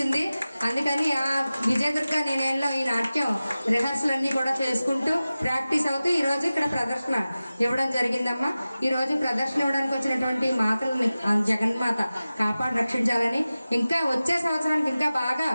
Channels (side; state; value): both; inverted; correlation -0.96